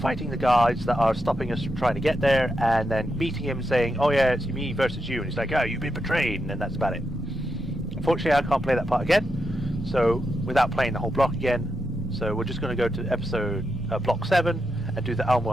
the guards that are stopping us from trying to get there, and then meeting him saying, oh yeah, it's me versus you, and he's like, oh, you've been betrayed, and then that's about it. Unfortunately I can't play that part again, so without playing the whole block again, so we're just going to go to episode block 7 and do the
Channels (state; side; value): normal; both; correlation 0.85